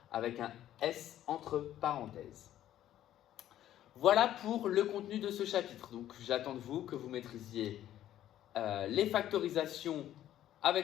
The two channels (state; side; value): quieter; right; 12.2 dB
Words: avec un S entre parenthèses. Voilà pour le contenu de ce chapitre. Donc, j'attends de vous que vous maîtrisiez les factorisations